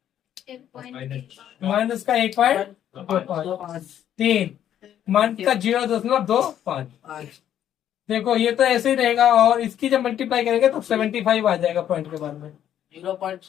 माइनस का 1.3, माइनस का 0.25। देखो ये तो ऐसे ही रहेगा, और इसकी जब मल्टीप्लाई करेंगे तो 75 आ जाएगा पॉइंट के बाद में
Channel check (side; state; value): right; quieter; 10.5 dB